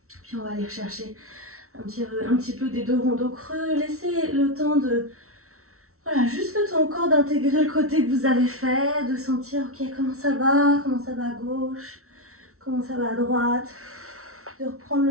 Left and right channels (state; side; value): late; left; 0.63 ms